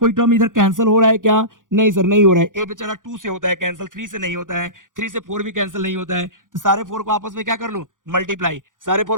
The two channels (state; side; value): late; left; 0.88 ms